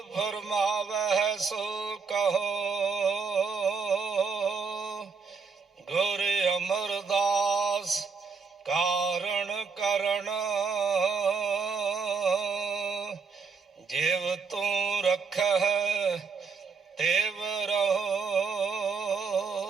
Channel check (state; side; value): quieter; left; 5.3 dB